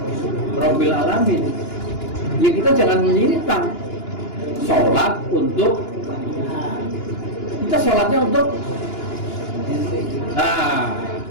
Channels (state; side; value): late; right; 2.9 ms